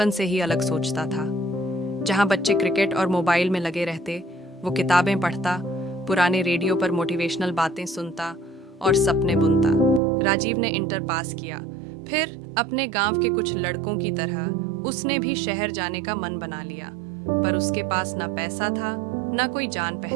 से ही अलग सोचता था। जहाँ बच्चे क्रिकेट और मोबाइल में लगे रहते, वो किताबें पढ़ता, पुराने रेडियो पर मोटिवेशनल बातें सुनता और सपने बुनता। राजीव ने इंटर पास किया, फिर अपने गांव के कुछ लड़कों की तरह उसने भी शहर जाने का मन बना लिया। पर उसके पास ना पैसा था, ना कोई जान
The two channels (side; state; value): left; drops out; at 10.0 s